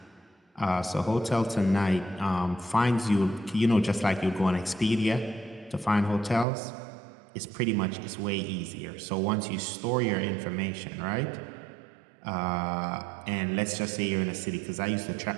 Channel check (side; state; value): left; drops out; at 6.5 s